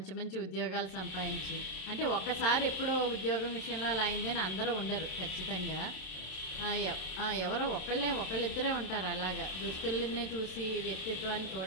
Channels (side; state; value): right; late; 27 ms